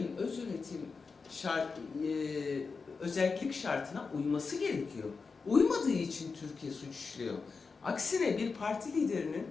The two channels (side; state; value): right; quieter; 4.7 dB